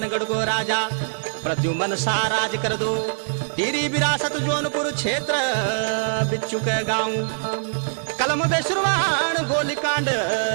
को राजा प्रद्युमन सा राज कर दो। टीरी विरासत जौनपुर क्षेत्र बिच्चू के गाँव कलम बेशुरवाण गोलीकांड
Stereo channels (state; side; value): silent; left; digital silence